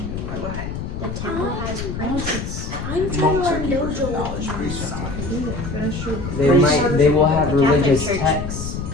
The temple has princes. I'm trying to Monks are learn keepers of dojo. knowledge, priests are not. They will have The Catholic religious Church texts,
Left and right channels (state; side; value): noise; left; rumble, 6 dB below the sound